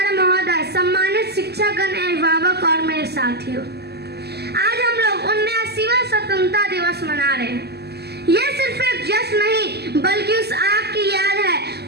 महोदय, सम्मानित शिक्षकगण, अभिभावक और मेरे साथियों, आज हम लोग 79वां स्वतंत्रता दिवस मना रहे हैं। यह सिर्फ एक जश्न नहीं बल्कि उस आग की याद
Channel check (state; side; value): late; left; 0.47 ms